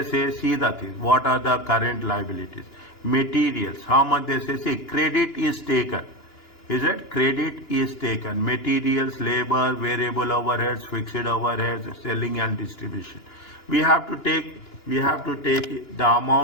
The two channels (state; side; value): late; right; 2.9 ms